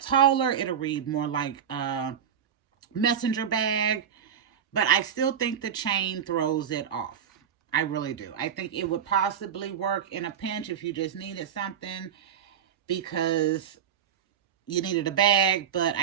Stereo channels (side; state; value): left; quieter; 8.5 dB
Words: taller. It'll read more like a messenger bag. But I still think the chain throws it off. I really do. I think it would possibly work in a pinch if you just needed something because you needed a bag, but